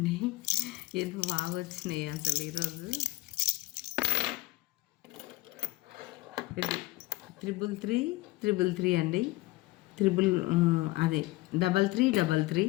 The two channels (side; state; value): right; quieter; 19.4 dB